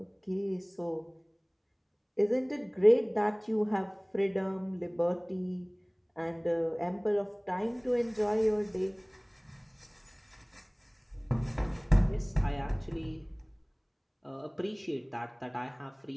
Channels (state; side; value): identical; both; correlation 1.00